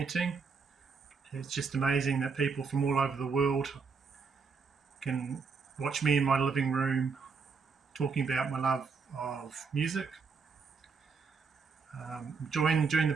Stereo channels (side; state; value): left; quieter; 5.2 dB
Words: It's just amazing that people from all over the world can watch me in my living room talking about my love of music. Enjoying doing the